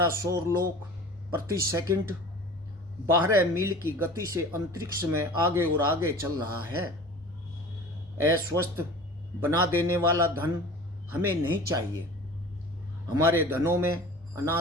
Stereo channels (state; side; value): normal; both; correlation 0.40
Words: सौर लोक प्रति सेकंड 12 मील की गति से अंतरिक्ष में आगे और आगे चल रहा है। अस्वस्थ बना देने वाला धन हमें नहीं चाहिए। हमारे धनों में